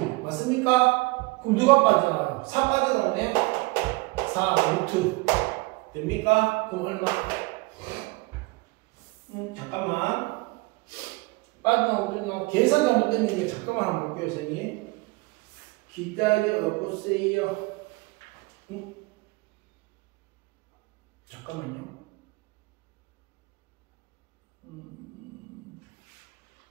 맞습니까? 그럼 누가 빠져나가요? 4 빠져나오네? 4 루트 됩니까? 그럼 얼마? 잠깐만 빠져나오고 계산 잘못된 게 잠깐만 한번 볼게요 선생님. 기다려 보세요. 잠깐만요.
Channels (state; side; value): quieter; left; 24.3 dB